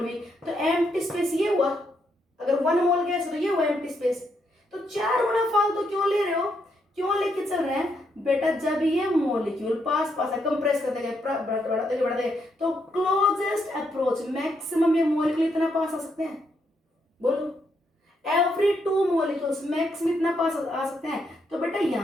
v, तो एम्प्टी स्पेस ये हुआ, अगर 1 मोल गैस तो ये हुआ एम्प्टी स्पेस। तो 4 गुना फालतू क्यों ले रहे हो, क्यों लेके चल रहे हैं बेटा, जब ये मॉलिक्यूल पास पास है, कंप्रेस करते गए, बढ़ाते गए, तो क्लोजेस्ट अप्रोच मैक्सिमम ये मॉलिक्यूल इतना पास आ सकते हैं, बोलो एवरी 2 मॉलिक्यूल्स मैक्सिमम इतना पास आ सकते हैं। तो बेटा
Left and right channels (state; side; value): normal; both; correlation 0.77